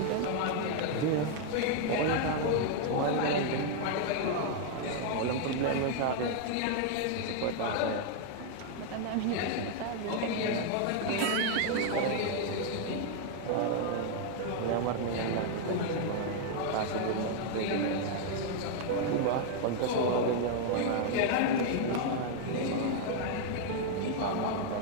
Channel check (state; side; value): different; both; correlation 0.00